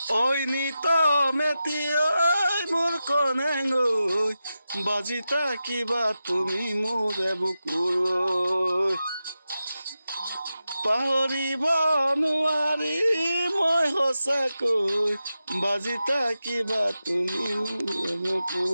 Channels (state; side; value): inverted; both; correlation -0.91